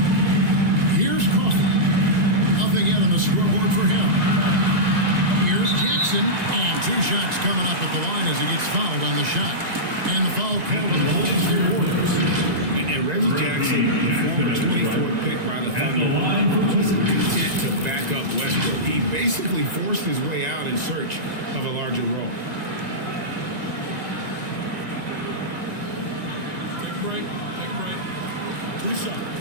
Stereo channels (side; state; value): left; late; 1.9 ms